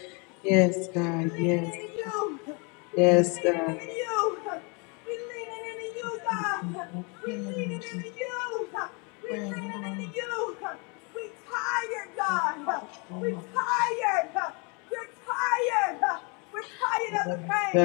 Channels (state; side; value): quieter; right; 32.4 dB